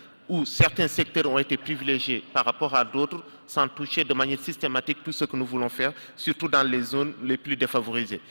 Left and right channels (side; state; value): both; inverted; correlation -1.00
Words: où certains secteurs ont été privilégiés par rapport à d'autres, sans toucher de manière systématique tout ce que nous voulons faire, surtout dans les zones les plus défavorisées.